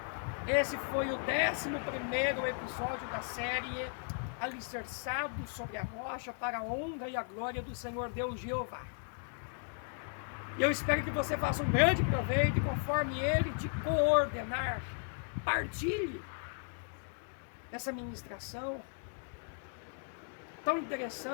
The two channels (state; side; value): silent; right; 54 dB below the other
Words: Esse foi o 11º episódio da série Alicerçado sobre a Rocha, para a honra e a glória do Senhor Deus Jeová. E eu espero que você faça um grande proveito, e conforme Ele te coordenar, compartilhe essa ministração tão